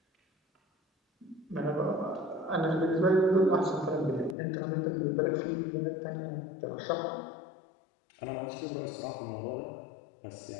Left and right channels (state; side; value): drops out; right; at 4.4 s